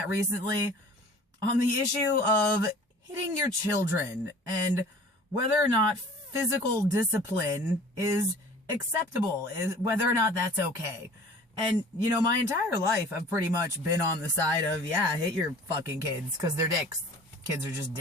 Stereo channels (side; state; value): both; normal; correlation 0.46